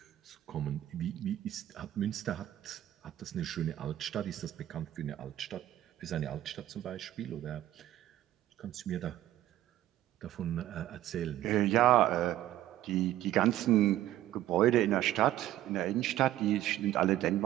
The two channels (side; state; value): left; quieter; 13.7 dB